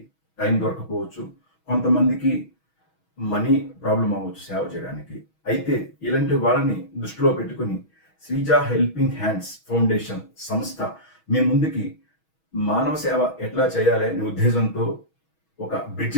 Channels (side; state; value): right; late; 6.2 ms